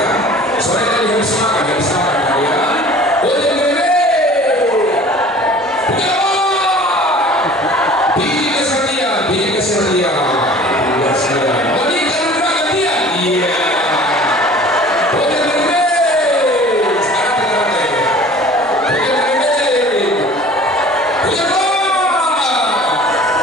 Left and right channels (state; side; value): normal; both; correlation 0.46